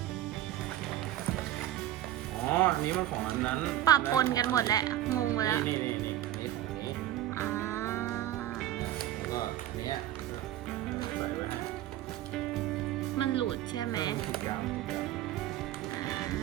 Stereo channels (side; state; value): left; quieter; 13.3 dB